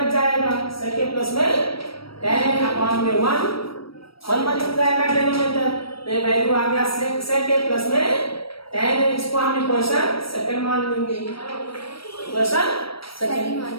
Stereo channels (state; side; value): late; right; 0.75 ms